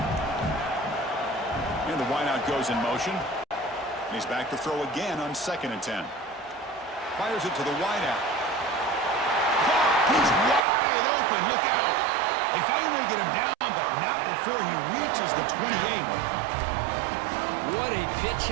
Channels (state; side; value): drops out; left; at 10.6 s